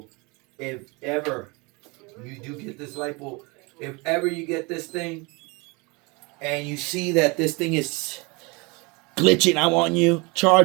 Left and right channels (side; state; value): left; quieter; 27.9 dB